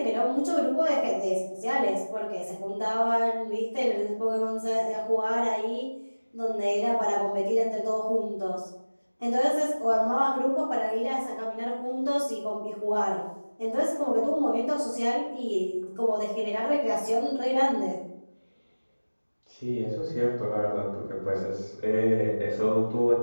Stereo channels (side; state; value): both; inverted; correlation -1.00